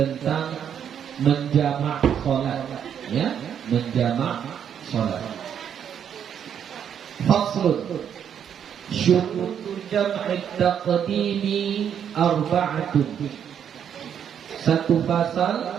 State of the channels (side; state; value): left; quieter; 8.6 dB